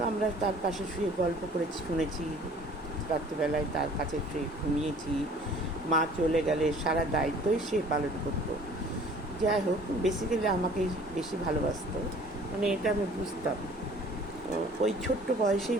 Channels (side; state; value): both; normal; correlation 0.51